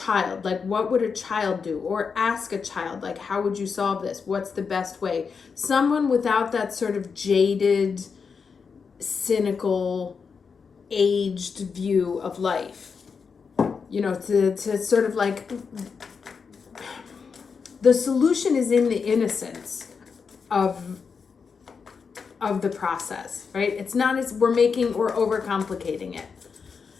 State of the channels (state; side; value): quieter; right; 5.6 dB